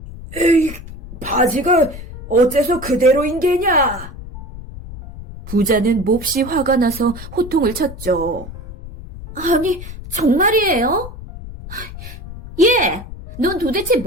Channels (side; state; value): left; noise; rumble, 13 dB below the sound